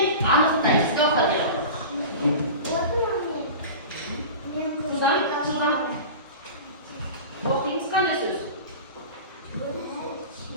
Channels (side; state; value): both; inverted; correlation -0.33